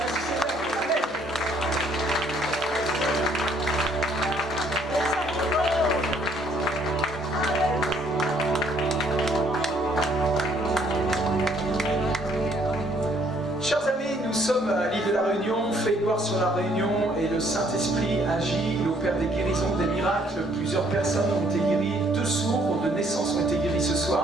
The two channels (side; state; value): both; normal; correlation 0.65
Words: Seigneur. Amen. Chers amis, nous sommes à l'île de la Réunion, fait gloire sur la Réunion, et le Saint-Esprit agit, il opère des guérisons, des miracles. Plusieurs personnes ont été guéries, 2 sourds de naissance ont été guéris ce